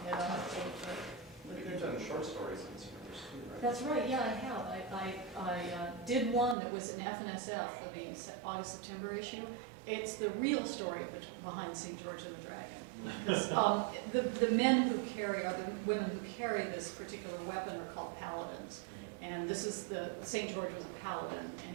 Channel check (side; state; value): left; drops out; at 6.6 s